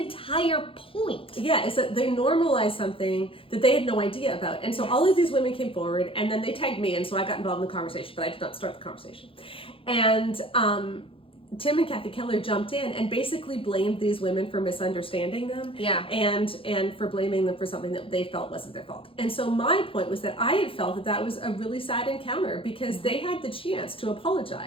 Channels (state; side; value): late; right; 0.26 ms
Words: point. Yeah, is that they normalized something that they had no idea about. And so all of these women came forward, and then they tagged me, and so I got involved in the conversation, but I did not start the conversation. And Tim and Kathy Keller jumped in and basically blamed these women for misunderstanding them, and for blaming them for something that they felt wasn't their fault. And so my point was that I had felt that was a really sad encounter, because they had the chance to